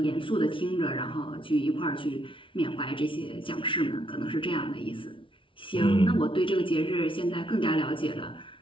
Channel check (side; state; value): right; late; 0.25 ms